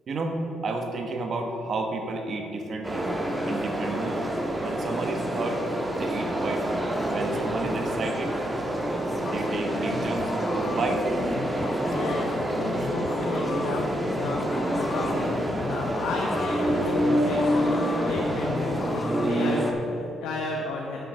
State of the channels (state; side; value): normal; both; correlation 0.80